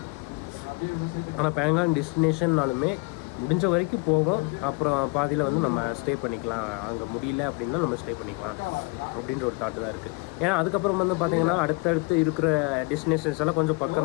ஆனால் பேங்காங் டெஸ்டினேஷன்னாலுமே முடிஞ்ச வரைக்கும் போவோம். அப்புறம் பாதியில் வந்து நம்ம ஸ்டே பண்ணிக்கலாம். அங்கே முடியல அப்படின்னா நம்ம ஸ்டே பண்ணிக்கலாம் அப்படின்ற ஒரு தாட்டு தான் இருக்குது. ஏன்னா அதுக்கப்புறம் வந்து பார்த்திங்கன்னா அடுத்தடுத்து இருக்கிற டெஸ்டினேஷன்ஸ் எல்லாம் கொஞ்சம்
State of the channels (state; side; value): quieter; right; 28.6 dB